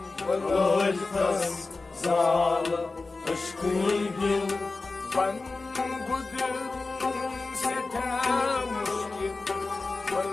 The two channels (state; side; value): quieter; right; 3.7 dB